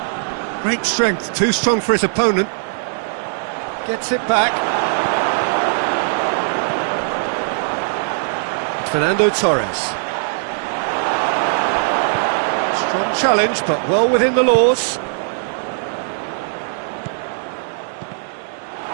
Great strength, too strong for his opponent. Gets it back. Fernando Torres. Strong challenge, but well within the laws.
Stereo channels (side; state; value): left; silent; digital silence